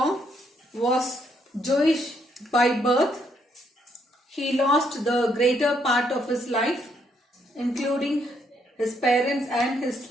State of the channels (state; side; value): normal; both; correlation 0.73